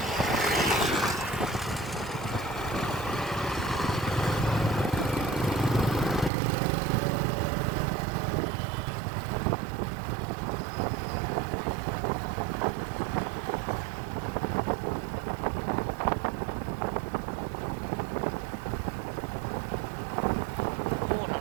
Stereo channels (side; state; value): left; drops out; at 6.3 s